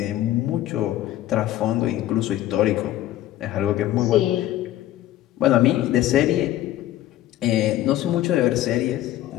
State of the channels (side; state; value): right; quieter; 13.9 dB